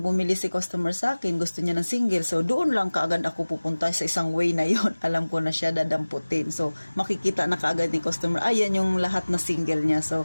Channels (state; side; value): inverted; both; correlation -1.00